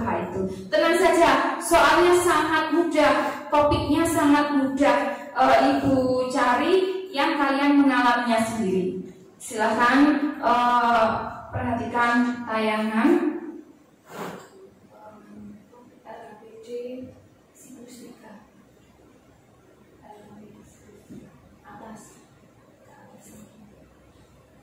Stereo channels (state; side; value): identical; both; correlation 1.00